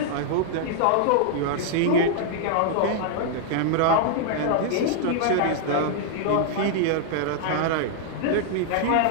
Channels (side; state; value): both; different; correlation -0.01